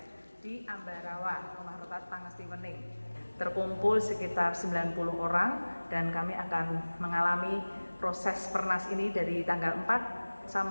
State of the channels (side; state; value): both; inverted; correlation -1.00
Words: di Ambarawa, Rumah Retret Pangesti Wening. Terkumpul sekitar 90 orang dan kami akan mengalami proses Pernas ini dari tanggal 4